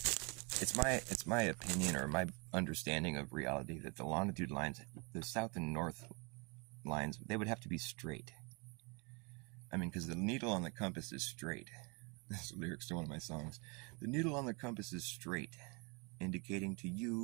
It's my opinion or my understanding of reality that the longitude lines, the south and north lines, they would have to be straight. I mean, because the needle on the compass is straight. That's the lyrics to one of my songs. The needle on the compass is straight, indicating to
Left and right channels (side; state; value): left; quieter; 31.7 dB